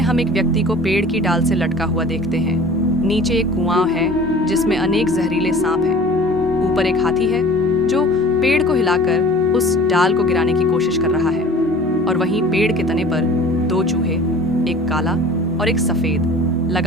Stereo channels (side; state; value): both; normal; correlation 0.43